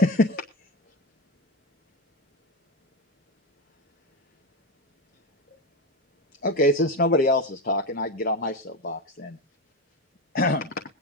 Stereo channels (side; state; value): both; normal; correlation 0.17